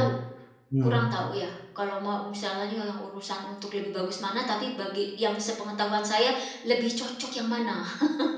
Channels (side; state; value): both; identical; correlation 1.00